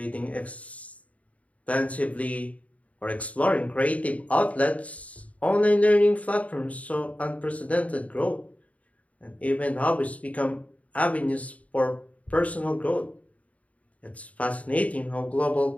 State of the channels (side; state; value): right; late; 0.068 ms